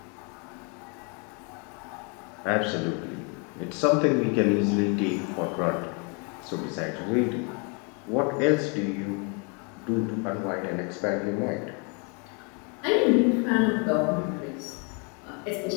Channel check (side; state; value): right; quieter; 34.7 dB